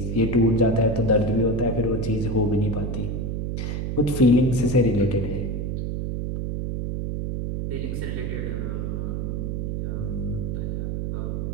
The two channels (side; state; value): right; noise; hum, 2 dB below the sound